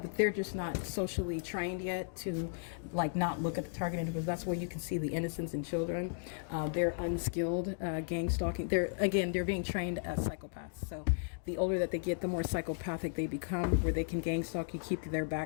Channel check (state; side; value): silent; right; digital silence